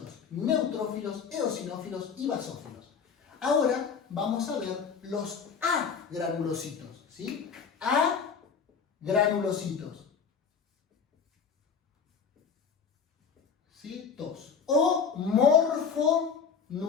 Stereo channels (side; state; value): right; quieter; 6.2 dB